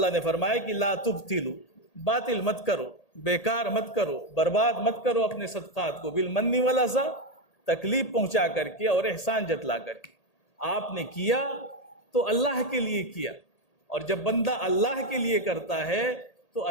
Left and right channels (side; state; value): right; late; 1.8 ms